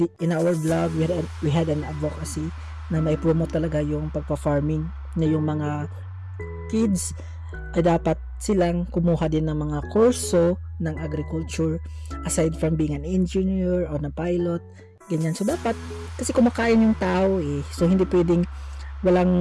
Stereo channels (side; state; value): both; identical; correlation 1.00